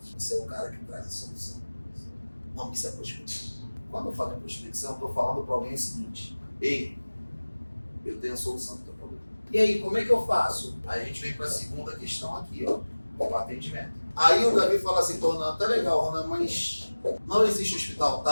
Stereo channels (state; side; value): inverted; both; correlation -1.00